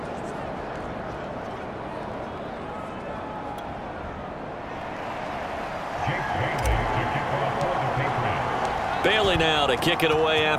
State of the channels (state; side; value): identical; both; correlation 1.00